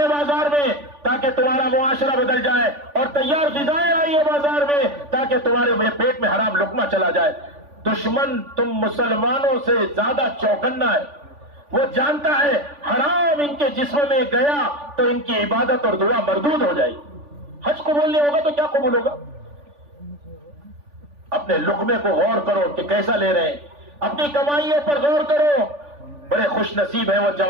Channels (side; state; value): left; late; 3.5 ms